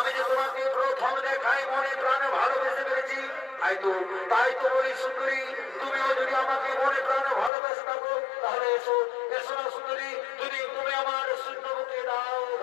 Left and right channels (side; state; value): right; drops out; at 7.5 s